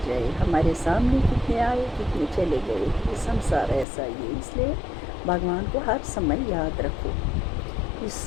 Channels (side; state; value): right; drops out; at 3.9 s